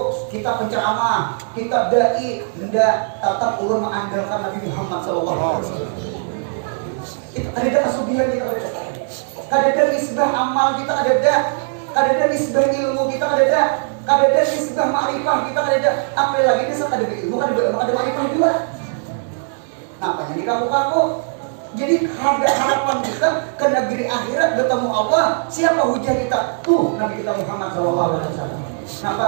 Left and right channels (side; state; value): left; silent; digital silence